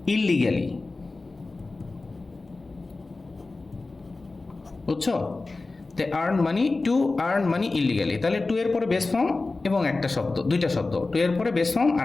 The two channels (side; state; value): right; quieter; 3.5 dB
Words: ইললিগালি, বুঝছো? টু আর্ন মানি ইললিগালি, তাহলে টু এর পরে বেস ফর্ম এবং একটা শব্দ, 2টা শব্দ, টু এর পরে বেস ফর্ম